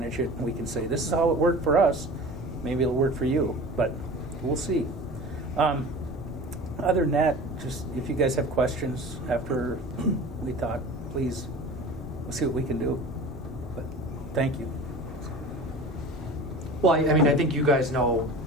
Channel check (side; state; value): both; normal; correlation 0.37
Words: it and we can say this is how it worked for us. Maybe it'll work for you, but we'll see. Other than that, just if you guys have questions after we talk, please, we'll see what we can do. But thank you. Well, I think you guys know